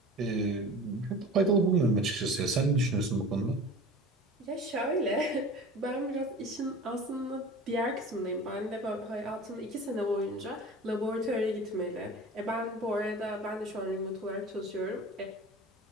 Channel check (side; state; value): both; normal; correlation 0.38